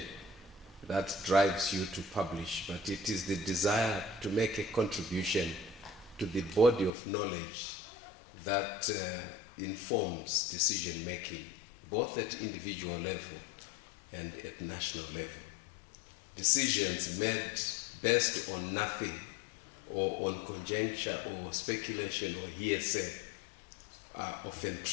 that drives you to publish, but it is the desire to make a contribution to the body of knowledge that informs decision making, both at individual level and at national level. Decisions made based on nothing or on conjecture or speculation or hearsay are often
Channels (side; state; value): right; drops out; at 6.9 s